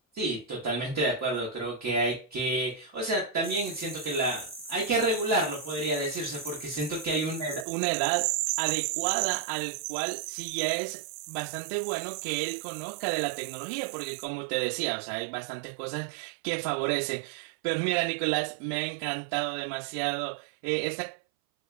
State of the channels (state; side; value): drops out; left; at 7.7 s